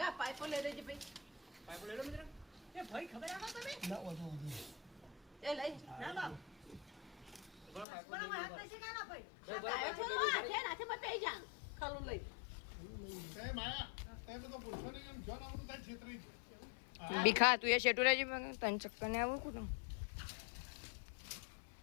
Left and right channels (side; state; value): right; drops out; at 7.9 s